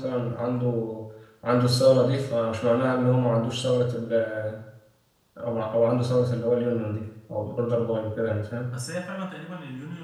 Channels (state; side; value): identical; both; correlation 1.00